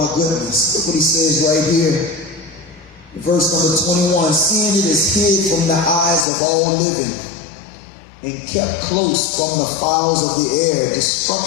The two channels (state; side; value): drops out; right; at 6.2 s